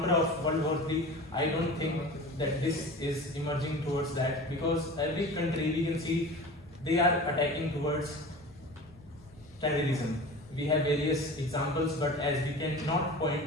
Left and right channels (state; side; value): normal; both; correlation 0.36